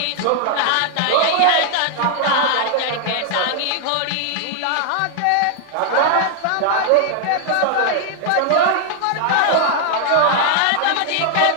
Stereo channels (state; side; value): different; both; correlation 0.00